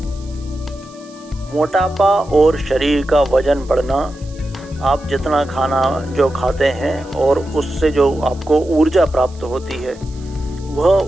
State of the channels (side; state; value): right; noise; hiss, 25 dB below the sound